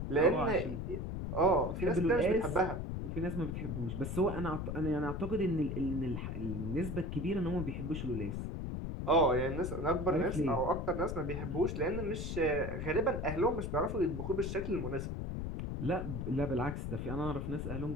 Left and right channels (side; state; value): left; noise; rumble, 4 dB below the sound